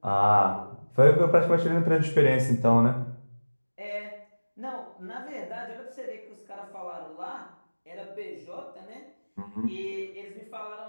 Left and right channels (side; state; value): both; inverted; correlation -1.00